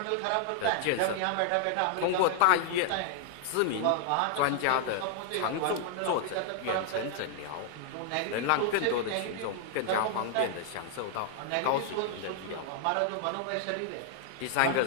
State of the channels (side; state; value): both; different; correlation 0.00